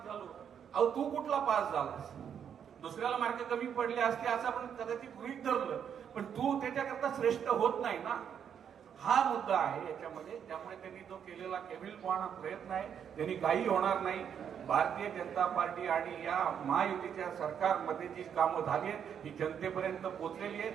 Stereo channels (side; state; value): left; quieter; 8.2 dB